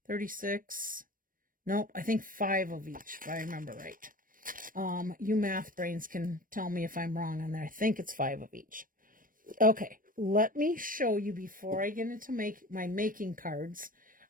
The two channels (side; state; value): left; late; 0.40 ms